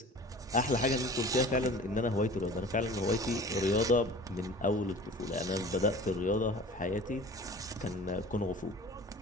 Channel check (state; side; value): normal; both; correlation 0.42